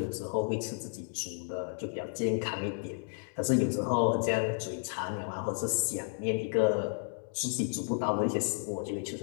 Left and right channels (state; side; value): silent; right; 56 dB below the other